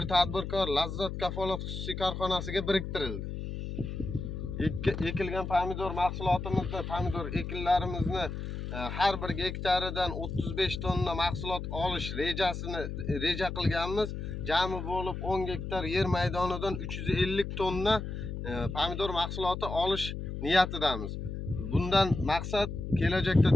tadbirkor Lazzat kafolat xususiy korxonasiga biriktirildi. Ekilgan pomidor mahsulotimizni, pomidor ekinlarimizni har bir gektaridan 35 tonna mahsulot olish reja qilganmiz. Jami bo'lib 10 gektar yer maydonidan 350 tonna pomidor mahsuloti olish niyatidamiz. Bundan maqsad kelajakda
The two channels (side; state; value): left; noise; hum, 6 dB below the sound